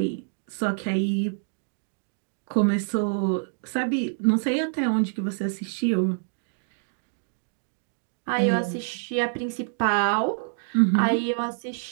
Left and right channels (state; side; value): silent; left; digital silence